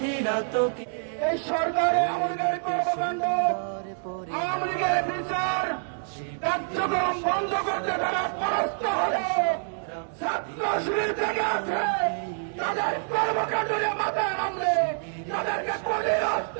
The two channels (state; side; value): silent; left; digital silence